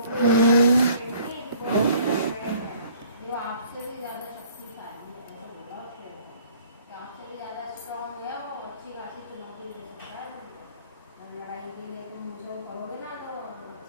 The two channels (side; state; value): both; inverted; correlation -0.56